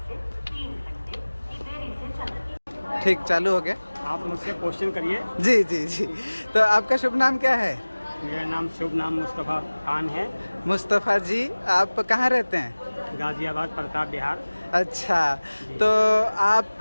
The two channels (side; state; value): both; inverted; correlation -1.00